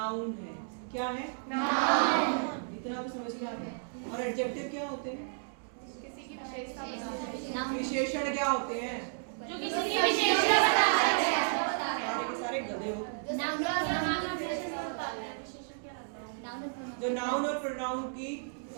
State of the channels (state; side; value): silent; left; digital silence